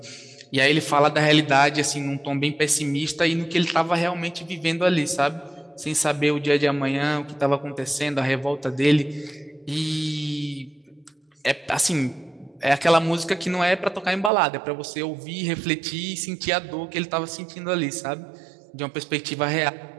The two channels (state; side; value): drops out; left; at 14.3 s